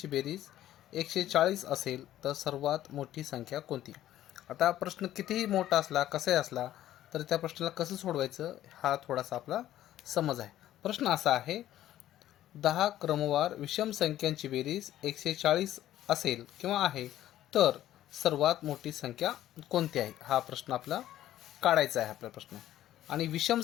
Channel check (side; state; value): right; quieter; 13.0 dB